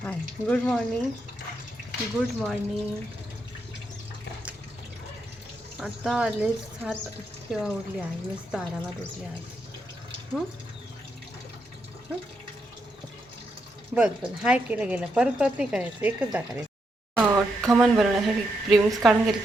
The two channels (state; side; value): normal; both; correlation 0.81